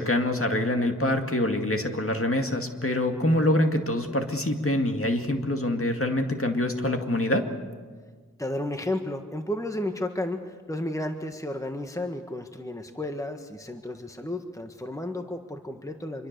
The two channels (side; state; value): both; normal; correlation 0.53